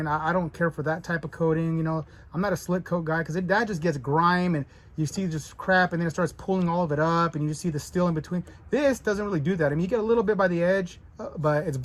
I don't care for that type of coating. You know, I'm not a slick coat guy because that just gets grime and you see just crap and then it starts pulling all of it up and you just see the steel in between. This doesn't really do that. I mean, you get a little bit by the edge, but it's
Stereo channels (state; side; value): identical; both; correlation 1.00